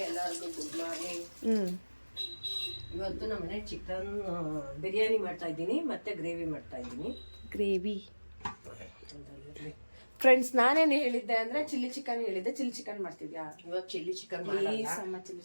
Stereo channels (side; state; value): both; inverted; correlation -1.00